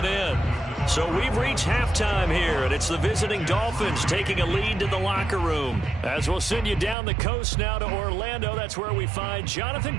in. So we've reached halftime here, and it's the visiting Dolphins taking a lead to the locker room. As we'll send you down the coast now to Orlando, that's where we find Jonathan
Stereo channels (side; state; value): left; drops out; at 7.0 s